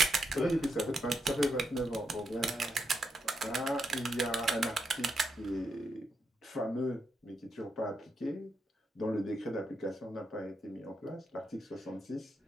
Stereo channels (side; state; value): both; normal; correlation 0.81